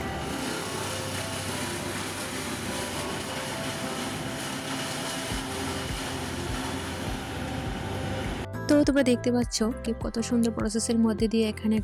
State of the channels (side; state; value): both; identical; correlation 1.00